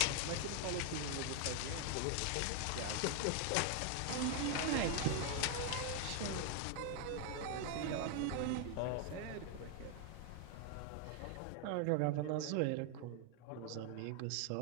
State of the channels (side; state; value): both; different; correlation 0.00